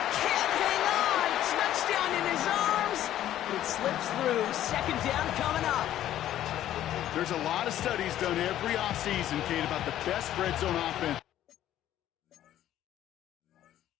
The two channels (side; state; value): right; quieter; 12.3 dB